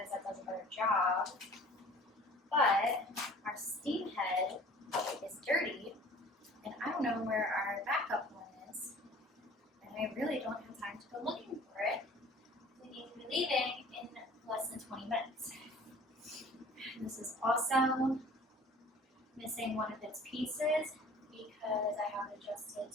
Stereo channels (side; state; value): both; normal; correlation 0.48